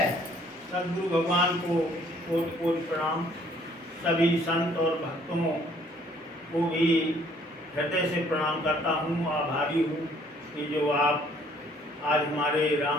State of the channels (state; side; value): normal; both; correlation 0.61